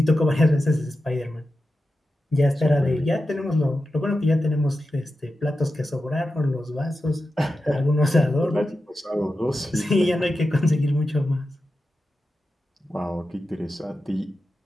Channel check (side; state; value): both; normal; correlation 0.91